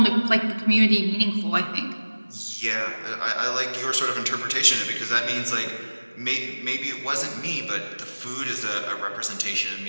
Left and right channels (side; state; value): both; inverted; correlation -1.00